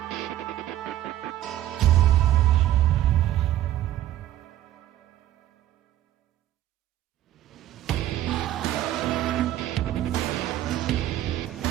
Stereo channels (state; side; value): quieter; left; 13.1 dB